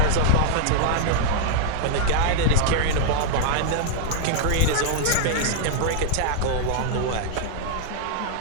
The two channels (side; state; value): both; different; correlation -0.01